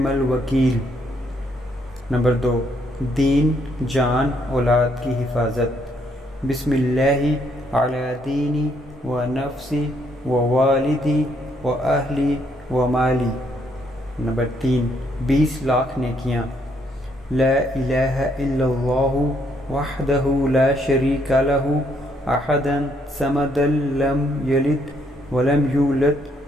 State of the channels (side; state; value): both; normal; correlation 0.71